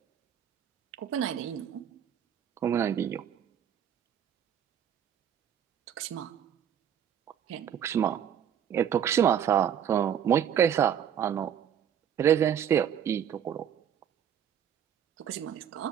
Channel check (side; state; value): left; quieter; 9.1 dB